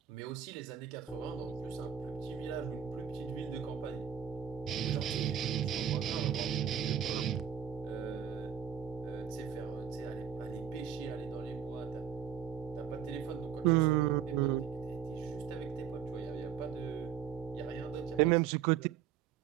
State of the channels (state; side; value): quieter; left; 8.8 dB